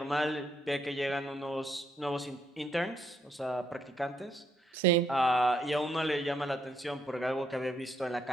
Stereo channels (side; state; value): both; normal; correlation 0.73